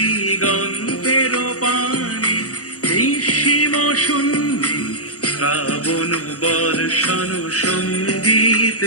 পানে, নিঃসীম শূন্যে শ্রাবণ বর্ষণ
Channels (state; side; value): late; right; 0.66 ms